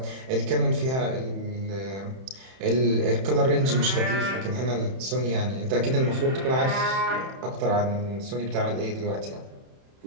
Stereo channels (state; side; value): late; left; 31 ms